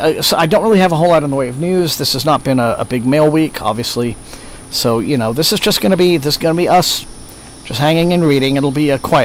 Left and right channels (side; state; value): both; identical; correlation 1.00